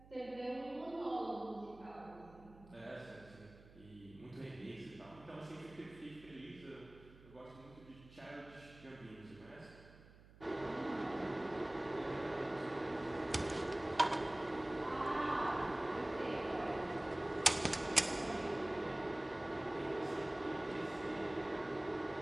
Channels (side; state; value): right; noise; hum, 21 dB below the sound